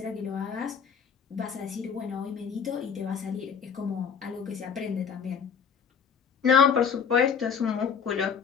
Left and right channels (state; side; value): quieter; right; 6.8 dB